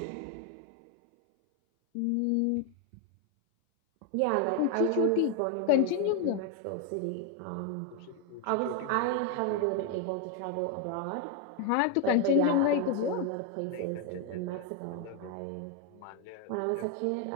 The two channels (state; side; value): different; both; correlation 0.01